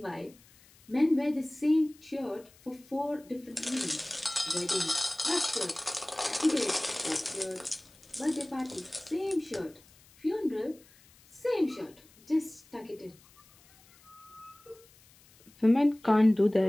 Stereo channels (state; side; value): noise; left; hiss, 27 dB below the sound